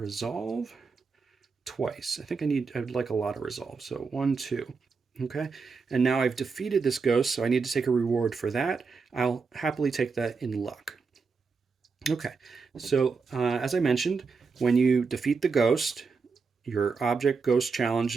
twice. I think I'd like a lot of resolve. So 1, 2. Okay, and now I've defeated this ghost, so I need to take a reward for that. I'll happily take that in luck. Okay, so as I mentioned, when you defeat the ghost, your object ghost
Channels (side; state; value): left; quieter; 4.9 dB